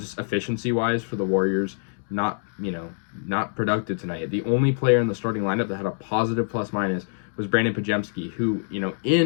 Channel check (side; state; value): right; silent; digital silence